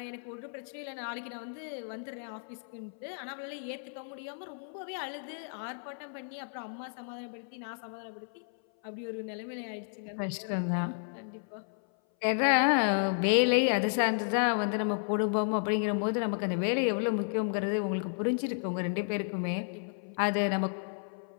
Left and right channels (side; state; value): right; silent; 56 dB below the other